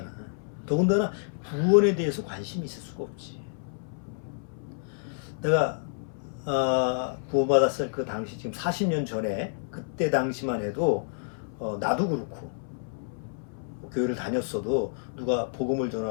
더군다나 구원에 대해서 관심이 있을 수가 없지. 내가 구원받았을 그 당시, 지금 40년 전에 그때 당시만 해도 나도 그렇고 교회를 다녔어도 누가 복음을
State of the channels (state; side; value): silent; right; 59 dB below the other